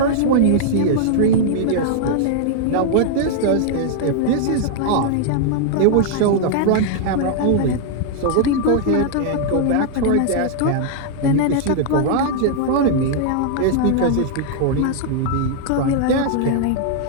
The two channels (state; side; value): different; both; correlation -0.01